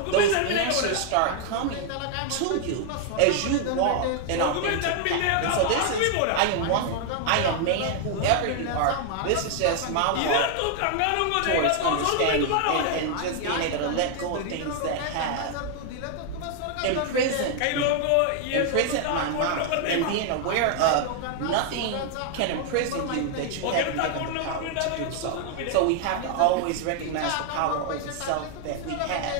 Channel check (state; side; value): different; both; correlation 0.00